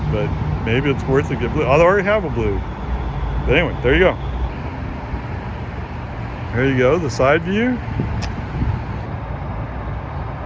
but maybe it's worth it to get blue. I already have a blue. But anyway, there you go. There you go, the side view.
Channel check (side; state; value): both; identical; correlation 1.00